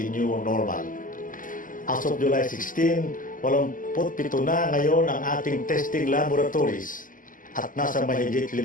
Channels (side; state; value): right; late; 0.39 ms